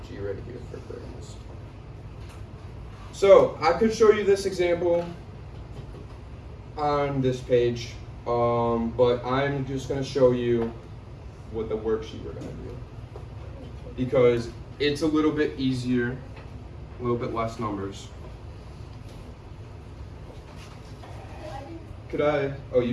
G right here for greatest. So, I could show you this example on this page, but I'm just gonna show you what the worksheet we're gonna do. Because it's a little bit easier, a little bit less numbers. could I? Oh, you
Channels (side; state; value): both; identical; correlation 1.00